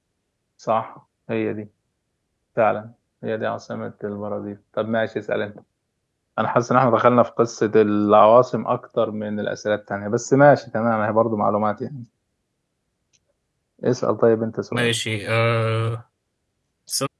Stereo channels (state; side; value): identical; both; correlation 1.00